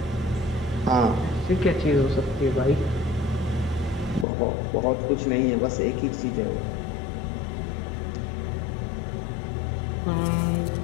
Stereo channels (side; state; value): right; drops out; at 4.2 s